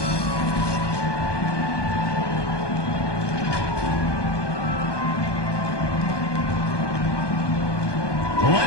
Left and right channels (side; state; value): right; late; 1.2 ms